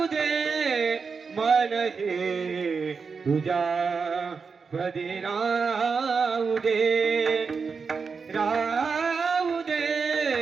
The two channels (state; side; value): quieter; left; 5.2 dB